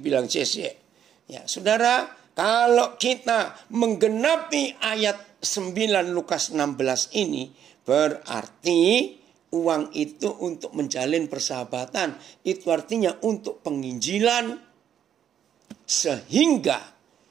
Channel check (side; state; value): left; quieter; 9.4 dB